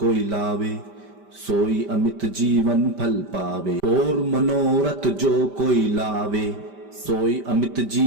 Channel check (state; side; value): late; left; 5.1 ms